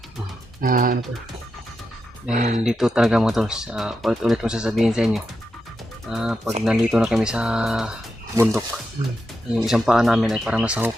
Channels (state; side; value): normal; both; correlation 0.87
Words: ano po. dahil dito talaga, mga tol, ulit-ulit kong sasabihin sa inyo, pag nandito na kami sa bundok, yung isang paa namin ay parang nasa